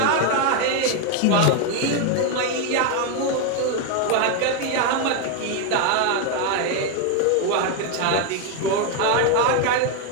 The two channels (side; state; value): both; different; correlation 0.01